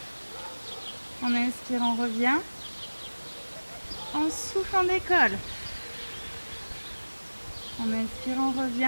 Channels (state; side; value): inverted; both; correlation -1.00